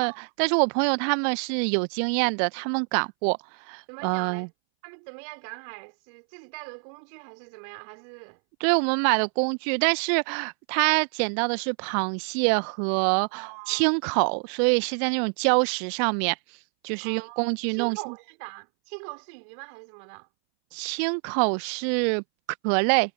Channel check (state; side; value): silent; left; 61 dB below the other